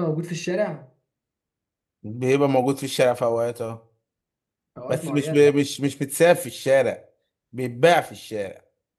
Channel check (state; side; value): identical; both; correlation 1.00